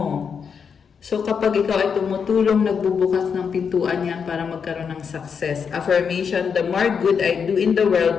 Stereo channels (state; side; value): quieter; right; 6.5 dB